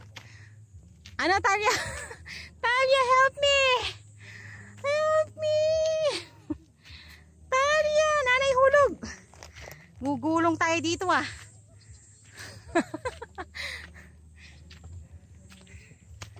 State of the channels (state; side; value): identical; both; correlation 1.00